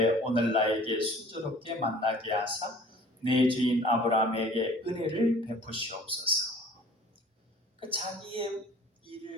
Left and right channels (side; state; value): both; normal; correlation 0.49